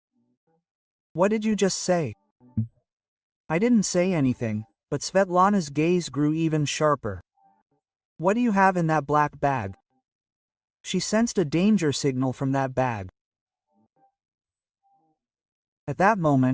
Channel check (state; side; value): identical; both; correlation 1.00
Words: "What did you just say?" "I didn't say anything," but Svetlana's gaze grew even sharper. "What do you have in that black bag?" She sensed a danger signal from that bag. At that